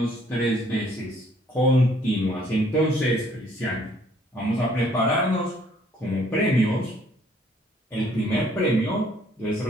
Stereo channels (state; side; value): normal; both; correlation 0.62